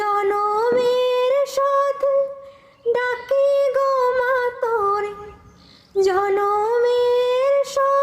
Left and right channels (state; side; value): identical; both; correlation 1.00